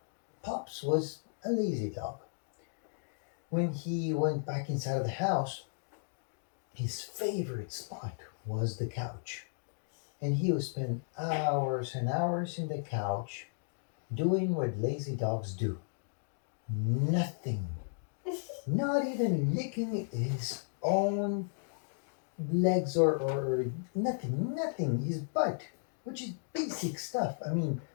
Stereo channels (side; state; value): right; silent; digital silence